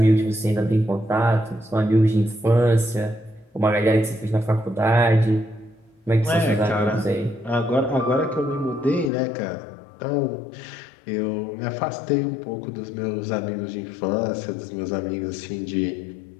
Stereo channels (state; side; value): drops out; right; at 9.1 s